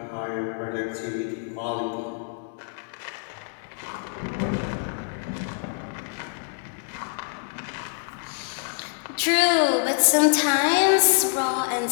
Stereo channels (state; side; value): silent; right; 61 dB below the other